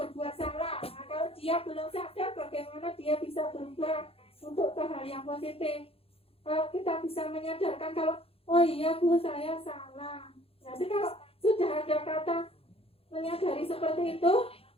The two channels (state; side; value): late; right; 0.28 ms